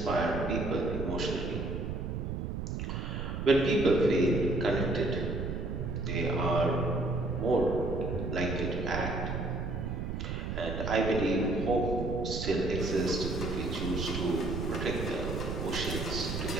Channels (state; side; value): noise; right; rumble, 3 dB below the sound